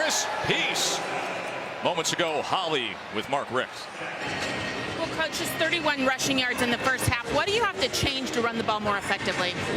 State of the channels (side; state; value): both; identical; correlation 1.00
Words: Peace. Moments ago, Holly with Mark Richt. Well, Coach, just 31 rushing yards in the first half. What do you have to change to run the ball more effectively?